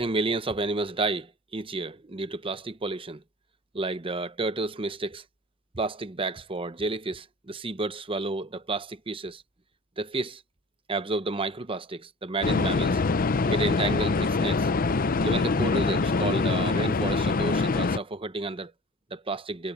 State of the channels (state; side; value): normal; both; correlation 0.41